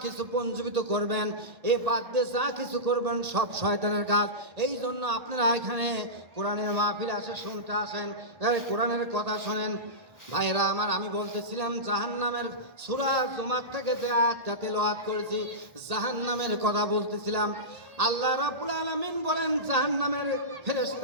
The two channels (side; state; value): left; late; 1.8 ms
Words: কিছু পঞ্জীবিত করবেন, এ বাদ দিয়ে যা কিছু করবেন সব শয়তানের কাজ। এই জন্য আপনারা এখানে কোরআনের মাহফিলে আসে শুনতে আসেন, কোরআনের কথা শোনেন। ভাইরা আমার, আমি বলতেছিলাম জাহান্নামের সূরা জুমার থেকে যে আয়াতটা তেলাওয়াত করেছি, জাহান্নামের কথা বলতেছিলাম। আল্লাহ রাব্বুল আলামিন বলেন জাহান্নামের